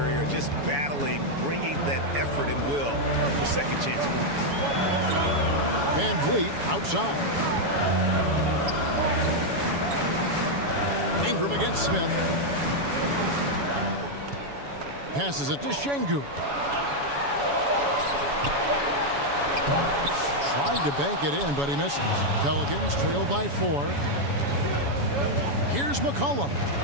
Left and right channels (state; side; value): late; left; 7.1 ms